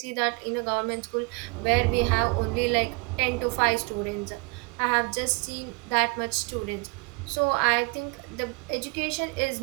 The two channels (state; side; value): quieter; left; 29.6 dB